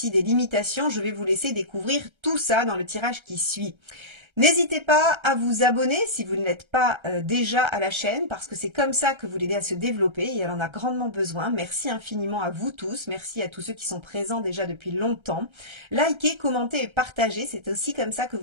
des limitations. Je vais vous laisser découvrir tout ça dans le tirage qui suit. N'hésitez pas à vous abonner si vous ne l'êtes pas déjà à la chaîne, parce que c'est comme ça que vous l'aidez à se développer et elle en a grandement besoin. Merci infiniment à vous tous, merci à tous ceux qui sont présents déjà depuis longtemps. Likez, commentez et partagez, c'est aussi comme ça que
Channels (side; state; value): left; late; 1.3 ms